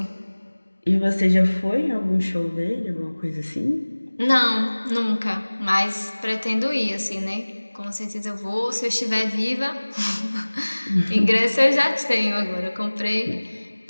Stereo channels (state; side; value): inverted; both; correlation -1.00